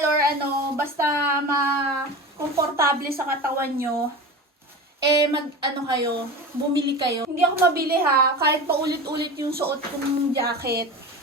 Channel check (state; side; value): normal; both; correlation 0.30